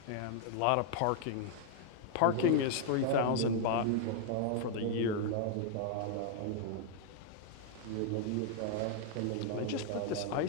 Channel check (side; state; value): both; different; correlation 0.00